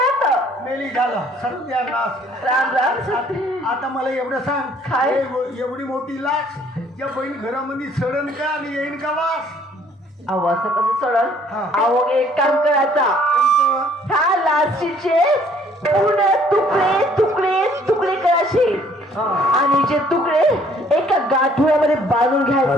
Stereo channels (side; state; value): both; normal; correlation 0.60